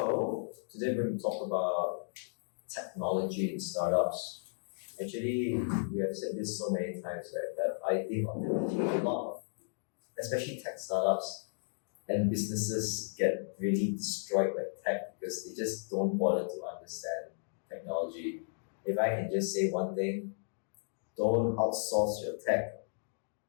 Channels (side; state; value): right; silent; digital silence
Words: today we're going to talk about technology in startups. Actually, we have said this so many times, right? That I think ultimately a lot of, especially tech startups and businesses get really destroyed by tech because they just don't bother to understand technology. If I can just say one thing, don't outsource your tech.